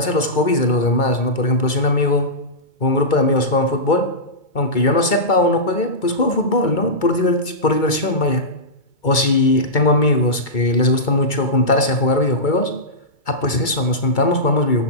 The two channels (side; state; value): right; late; 2.2 ms